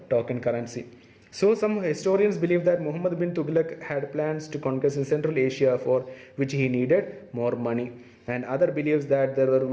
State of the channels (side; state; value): both; identical; correlation 1.00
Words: token currency. So some historians believe that Muhammad bin Tughlaq had plans to conquest in Central Asia, for which he needed more money. And other believes that there were